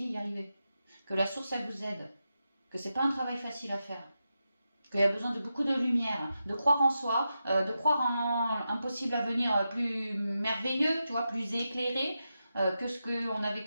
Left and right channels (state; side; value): inverted; both; correlation -0.89